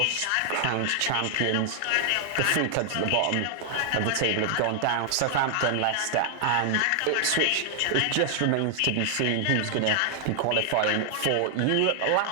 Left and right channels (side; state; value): both; different; correlation 0.00